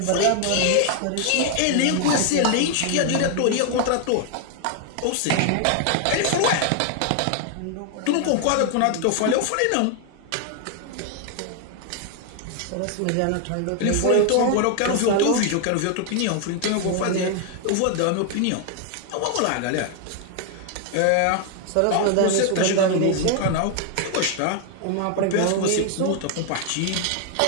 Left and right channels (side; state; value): both; different; correlation 0.00